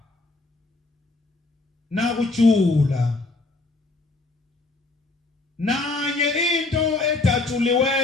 nakujula nanye into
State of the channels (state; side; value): quieter; right; 3.2 dB